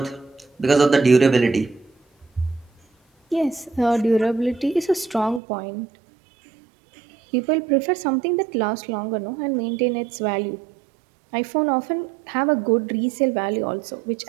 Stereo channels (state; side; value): drops out; left; at 5.4 s